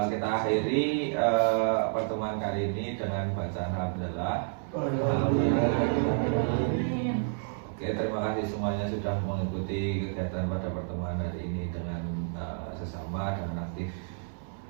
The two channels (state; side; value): silent; left; 58 dB below the other